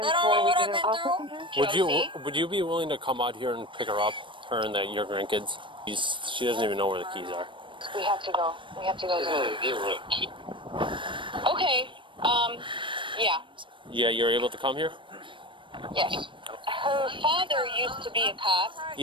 They don't know what I've been through. Would you be willing to come out here and pick her up, her and your grandkids? She doesn't even know where the keys are. We have to go. We have to go. Okay. Yeah. Yeah, you're able to come here? Yes. Her father used to be a cop.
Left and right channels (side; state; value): left; late; 0.24 ms